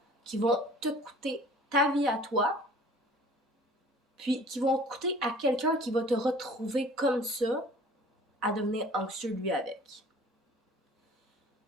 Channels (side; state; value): both; normal; correlation 0.49